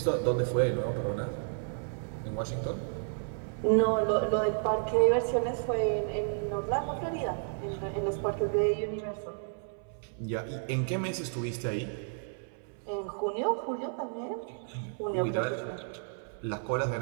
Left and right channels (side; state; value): left; silent; 57 dB below the other